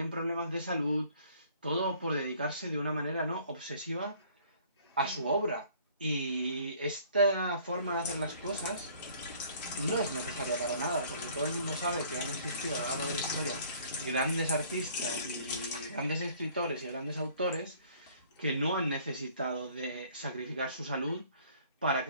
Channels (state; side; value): inverted; both; correlation -0.57